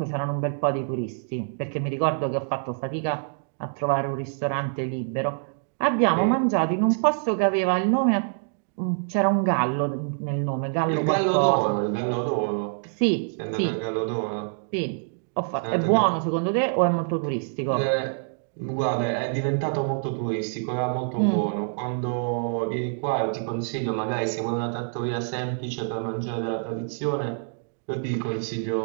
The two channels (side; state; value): left; silent; digital silence